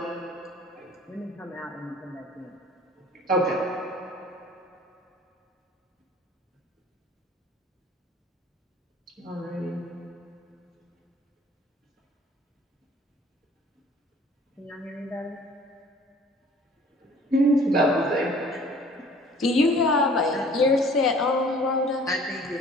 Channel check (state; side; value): normal; both; correlation 0.51